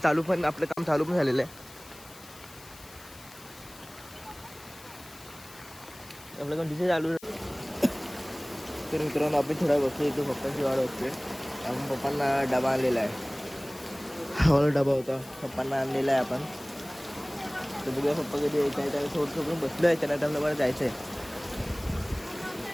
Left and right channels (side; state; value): left; noise; hiss, 20 dB below the sound